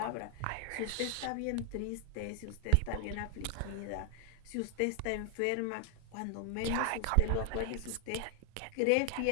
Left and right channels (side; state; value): both; different; correlation 0.00